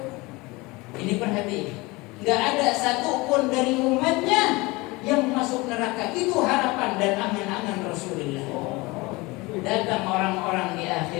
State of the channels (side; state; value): right; quieter; 23.3 dB